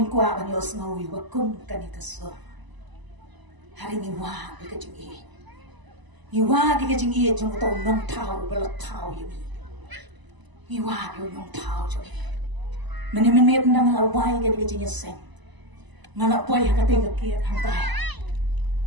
kwa kan yos ngawi wakum kanikaso hari ngiwa di kajing i. Ngiwa di kajing i jung tau nong tau belat tau yumi. Ngiwa di nong tau jung i. Meni nang lawai ke di kajing seng. Ngalak boy hakate ke hantai.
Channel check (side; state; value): left; late; 1.0 ms